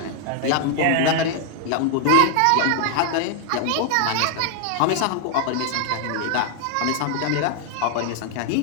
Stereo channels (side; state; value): both; different; correlation 0.00